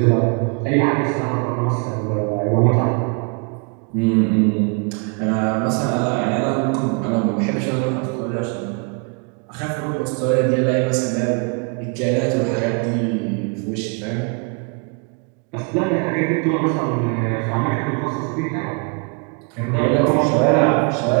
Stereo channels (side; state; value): left; quieter; 36.5 dB